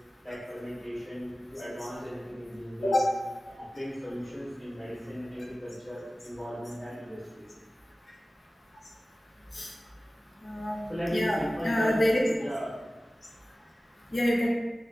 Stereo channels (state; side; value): normal; both; correlation 0.96